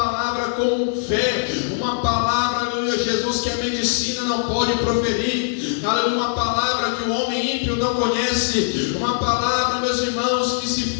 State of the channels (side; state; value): right; silent; digital silence